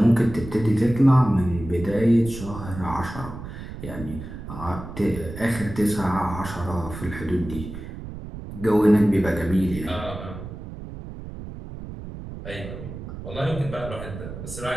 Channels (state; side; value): noise; right; rumble, 10 dB below the sound